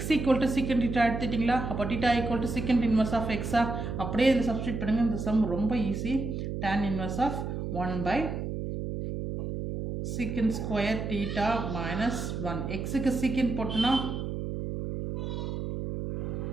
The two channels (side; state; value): right; noise; hum, 4 dB below the sound